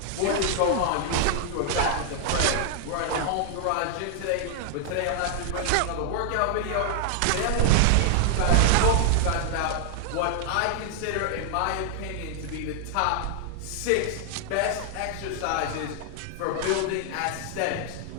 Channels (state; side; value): different; both; correlation 0.00